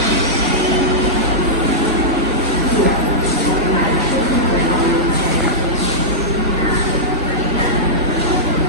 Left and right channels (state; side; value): normal; both; correlation -0.10